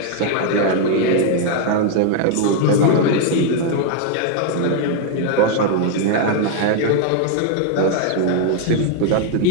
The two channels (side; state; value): both; different; correlation 0.00